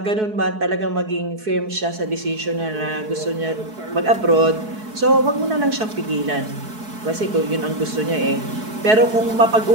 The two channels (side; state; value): left; late; 4.7 ms